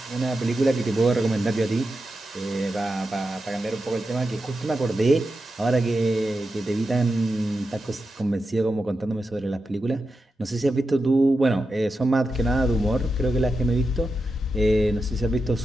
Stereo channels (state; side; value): normal; both; correlation 0.89